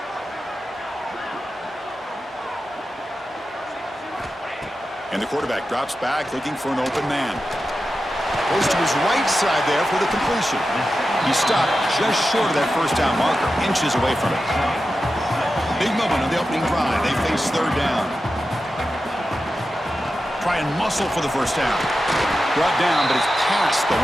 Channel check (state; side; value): normal; both; correlation 0.91